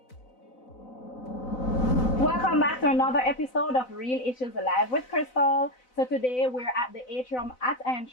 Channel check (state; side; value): late; right; 4.0 ms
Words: Welcome back to another episode of Real Issues Live with Crystal. So today we're at the Atrium at